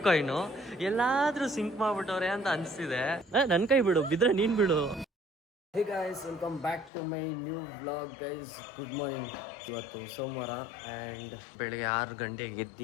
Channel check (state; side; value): drops out; right; at 6.9 s